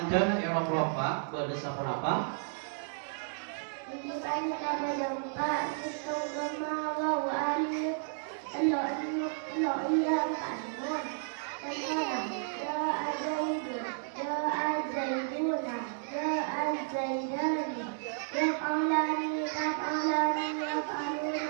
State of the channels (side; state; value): left; silent; digital silence